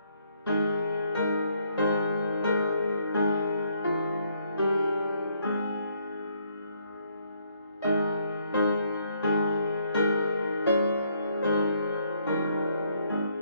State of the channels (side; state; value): both; inverted; correlation -0.70